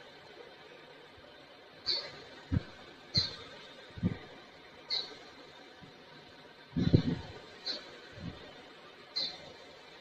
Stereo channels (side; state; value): both; identical; correlation 1.00